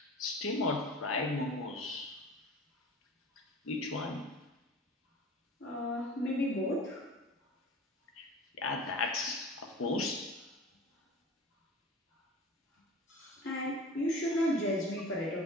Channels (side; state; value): both; normal; correlation 0.39